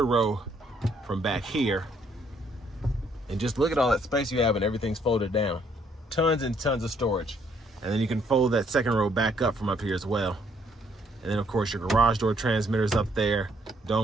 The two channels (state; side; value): normal; both; correlation 0.68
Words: row from back here. And just look at all that space you have and everything's folded down. Tons and tons of storage. And then you can fold that 2nd row back up from up here as well. And then of course your garage door transmitters up there,